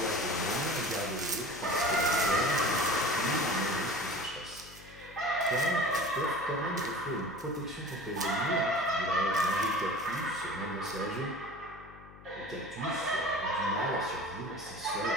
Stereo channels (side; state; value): left; noise; hum, 19 dB below the sound